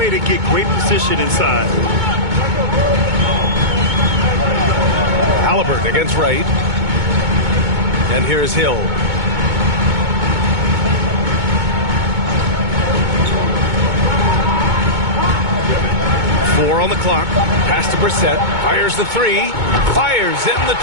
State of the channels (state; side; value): late; left; 2.2 ms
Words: to get great position inside. Halliburton against Wright. And here's Hill. Four on the clock. Pass to Brissett. Fires the 3. Fires in the